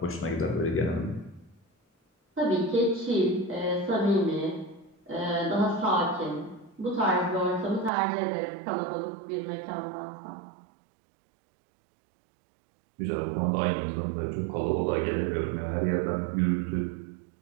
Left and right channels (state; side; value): drops out; left; at 7.9 s